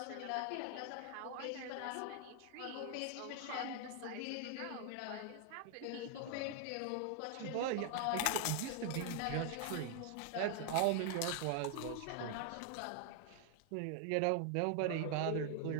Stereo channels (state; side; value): different; both; correlation 0.00